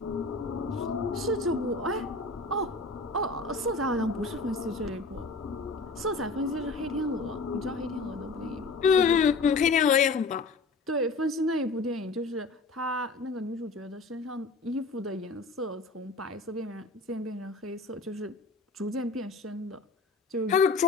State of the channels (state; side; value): quieter; right; 3.7 dB